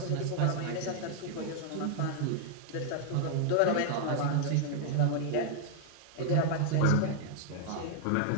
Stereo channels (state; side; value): different; both; correlation -0.01